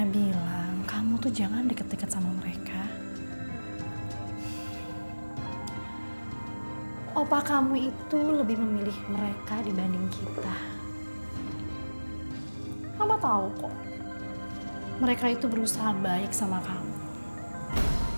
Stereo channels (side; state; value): both; inverted; correlation -1.00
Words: bilang, kamu tuh jangan deket-deket sama mereka. Opa kamu itu lebih memilih mereka dibanding kita. Mama tahu kok. Mereka itu berusaha baik sama kamu.